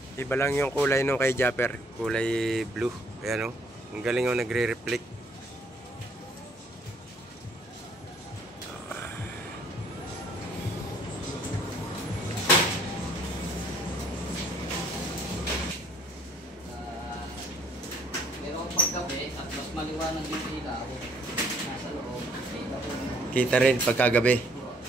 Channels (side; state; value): both; normal; correlation 0.63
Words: Iba lang yung kulay nung kay Japper. Kulay blue. Ayan, oh. Ang galing, oh, nagre-reflect. Pero paggabi at mas maliwanag yung ilaw, nasa loob, kita ko. Kita rin pagkagabi.